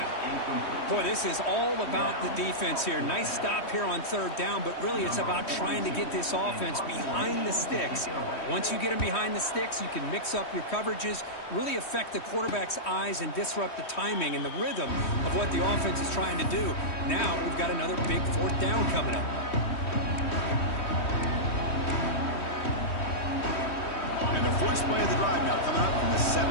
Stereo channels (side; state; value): right; late; 3.1 ms